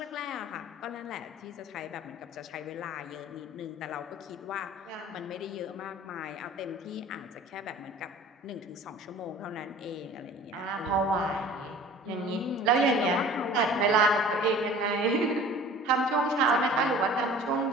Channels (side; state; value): both; normal; correlation 0.45